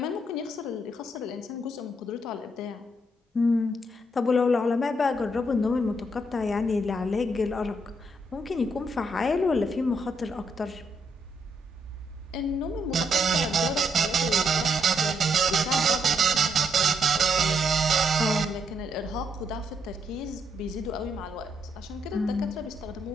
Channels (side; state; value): both; normal; correlation 0.76